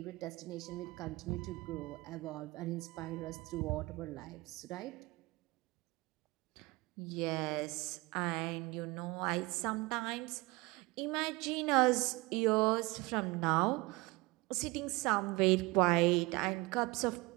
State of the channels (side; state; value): left; quieter; 22.9 dB